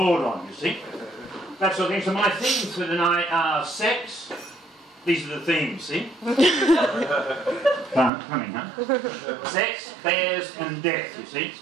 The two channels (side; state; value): left; drops out; at 8.1 s